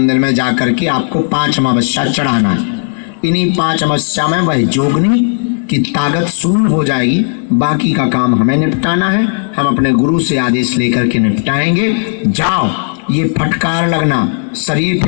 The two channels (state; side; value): silent; right; digital silence